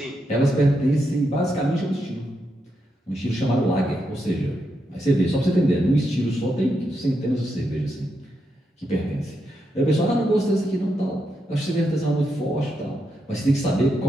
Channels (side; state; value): both; normal; correlation 0.83